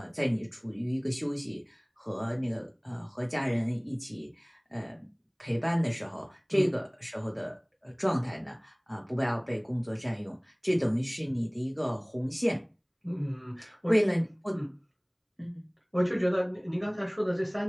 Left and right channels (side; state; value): both; identical; correlation 1.00